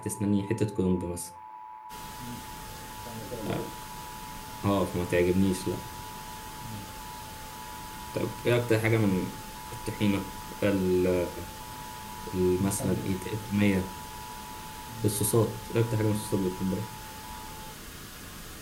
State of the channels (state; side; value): identical; both; correlation 1.00